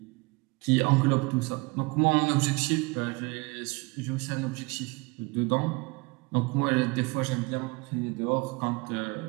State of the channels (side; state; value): left; quieter; 26.5 dB